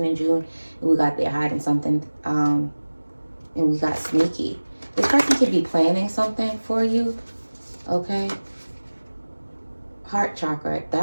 in June, and we got they're hiding something. And we got sneaky. This person could be planning something for you. Okay. Heart chakra.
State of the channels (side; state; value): both; inverted; correlation -1.00